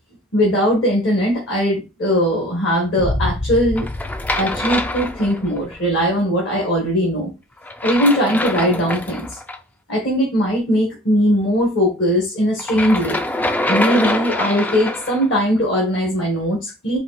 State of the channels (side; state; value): both; normal; correlation 0.46